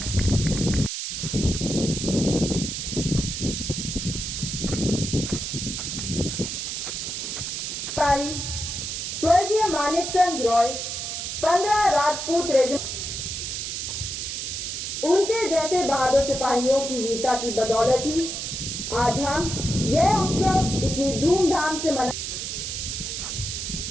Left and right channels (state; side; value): noise; right; hiss, 4 dB below the sound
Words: स्वर्गीय मानिकचंद रॉय 15 राजपूत रेजिमेंट, उनके जैसे बहादुर सिपाहियों की वीरता की बदौलत ही आज हम यह उत्सव इतनी धूमधाम से मना।